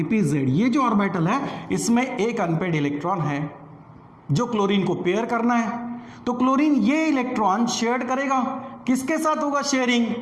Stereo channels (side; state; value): both; identical; correlation 1.00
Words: ये जो ऑर्बिटल है इसमें एक अनपेड इलेक्ट्रॉन है जो क्लोरीन को पेयर करना है। तो क्लोरीन ये इलेक्ट्रॉन शेयर करेगा, किसके साथ होगा शेयरिंग,